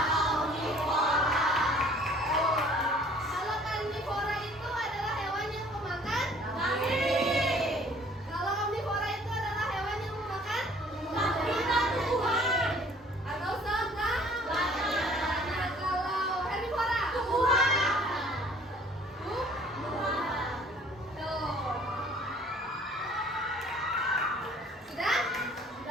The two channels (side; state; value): both; normal; correlation 0.54